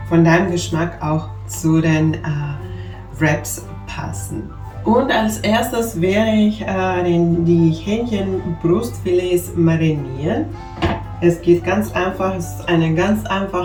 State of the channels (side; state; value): both; identical; correlation 1.00